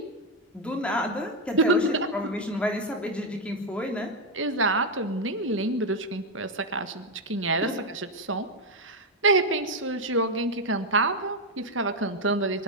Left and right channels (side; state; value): both; normal; correlation 0.05